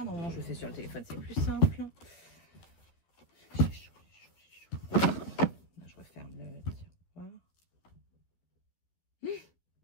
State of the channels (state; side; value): late; right; 12 ms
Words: Normalement, je le fais sur le téléphone, c'est plus simple. J'ai chaud, j'ai chaud. Là, je referme le tiroir.